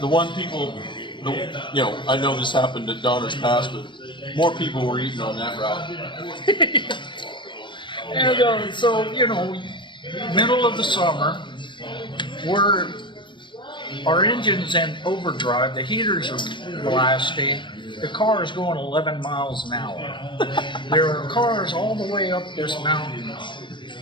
one people, I know this happened at Donner's Pass, but more people were eating on that route. And so, middle of the summer, our engine's in overdrive, the heaters are blasting, the car is going 11 miles an hour. There are cars all the way up this mountain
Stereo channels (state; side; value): late; right; 0.23 ms